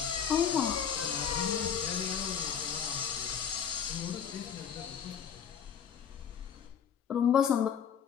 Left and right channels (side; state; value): right; quieter; 7.8 dB